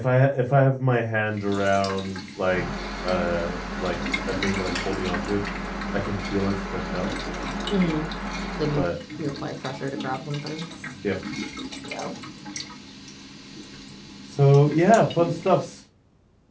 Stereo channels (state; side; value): identical; both; correlation 1.00